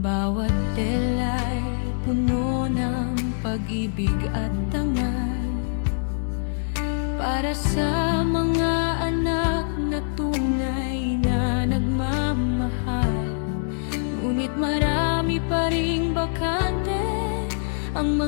tela'y puno ng pag-ibig at tangal, para sa mga anak na tunay na nagmamahal. Ngunit marami pa ring bakante ang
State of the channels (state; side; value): silent; right; digital silence